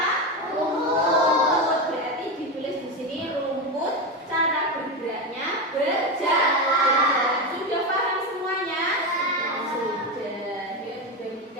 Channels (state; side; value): normal; both; correlation 0.15